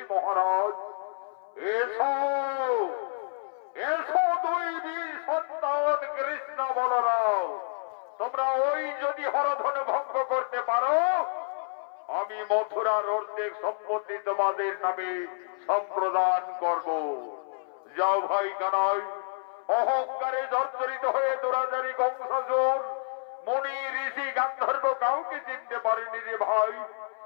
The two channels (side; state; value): right; silent; 59 dB below the other